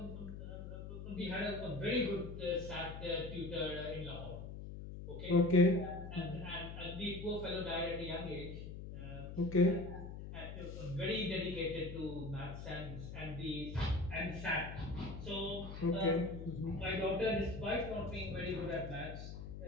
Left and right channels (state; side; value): noise; left; hum, 9 dB below the sound